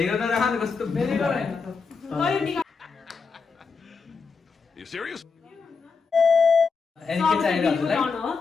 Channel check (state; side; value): quieter; right; 5.0 dB